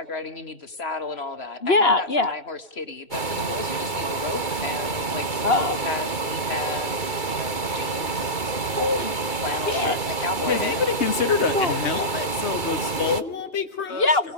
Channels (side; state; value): right; late; 2.3 ms